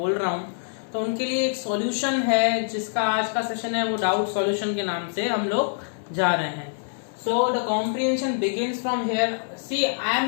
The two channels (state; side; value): silent; right; digital silence